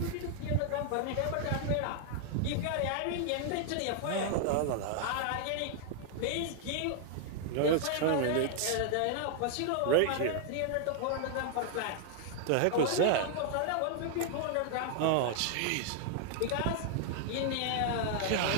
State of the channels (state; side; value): different; both; correlation 0.00